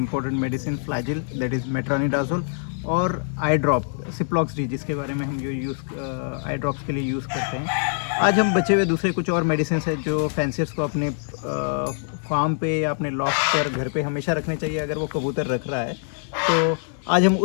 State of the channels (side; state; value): right; silent; digital silence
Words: medicine, Flagyl that is metronidazole और आई ड्रॉप सिप्लॉक्स डी, जिसके बारे में हम जो आई ड्रॉप्स के लिए यूज़ करते हैं। आज हम बचे हुए दूसरे कुछ और मेडिसिन है जो फैंसियर्स को अपने फार्म पे या अपने लॉफ्ट पर घर पे हमेशा रखने चाहिए अगर वो कबूतर रख रहा है। तो आज हम